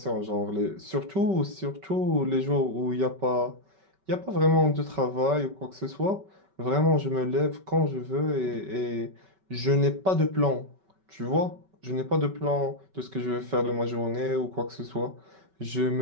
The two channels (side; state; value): left; late; 5.2 ms